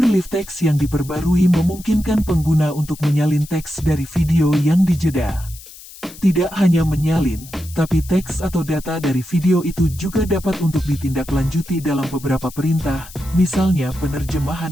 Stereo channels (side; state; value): left; noise; hiss, 18 dB below the sound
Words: Live Text yang diperbarui memungkinkan pengguna untuk menyalin teks dari video yang dijeda. Tidak hanya menyalin, tapi teks atau data dari video itu juga dapat untuk ditindaklanjuti dalam beberapa perintah, misalnya penerjemahan